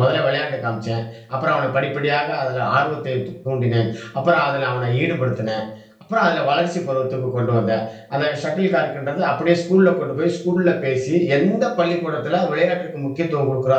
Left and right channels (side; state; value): both; identical; correlation 1.00